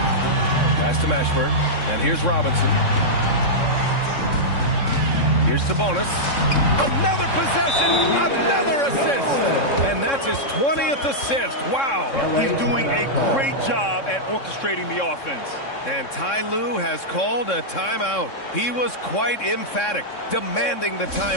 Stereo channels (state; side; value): late; right; 3.6 ms